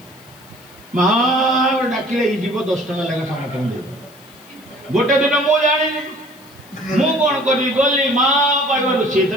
ମା ଡାକିଲେ ଏଇ ଯିବ 10 ଟଙ୍କା ଲେଖା ସମସ୍ତଙ୍କୁ ଦେବ। ଗୋଟେ ଦିନ ମୁଁ ଜାଣିନି, ମୁଁ କ'ଣ କରିବି? ଗଲି ମା କହିବାରୁ ସିଏ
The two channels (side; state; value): left; noise; hiss, 27 dB below the sound